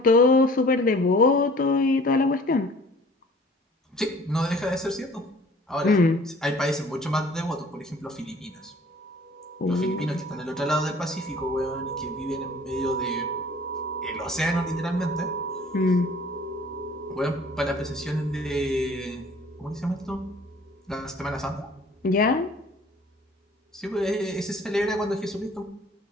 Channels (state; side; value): normal; both; correlation 0.51